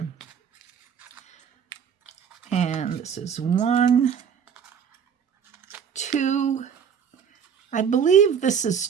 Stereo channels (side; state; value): left; quieter; 7.5 dB